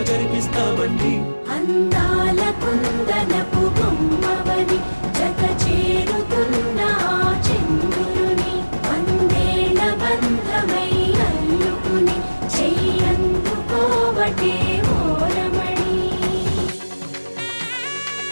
జరిపిస్తామండి. అందాల కుందనపు బొమ్మవని జత చేరుతున్న చంద్రుని, వందేళ్ల బంధమై అల్లుకుని చెయ్యందుకోవటే ఓరమణి.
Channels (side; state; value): both; inverted; correlation -1.00